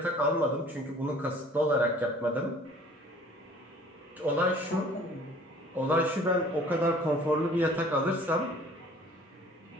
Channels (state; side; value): normal; both; correlation 0.51